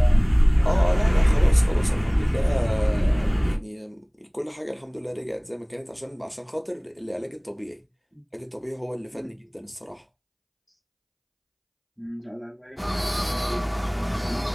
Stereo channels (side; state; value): both; identical; correlation 1.00